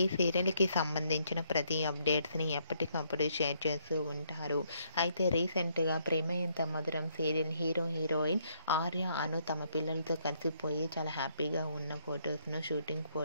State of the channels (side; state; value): both; inverted; correlation -0.71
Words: ఈ సీరియల్కి సంబంధించిన ప్రతి అప్డేట్స్ని ఎప్పటికప్పుడు షేర్ చేస్తూ ఉంటారు. అయితే రీసెంట్గా ప్రేమ ఎంత మధురం సీరియల్ హీరోయిన్ ఆర్య, అను తమ పిల్లలతో కలిసిపోయి చాలా హ్యాపీగా ఉన్న షూటింగ్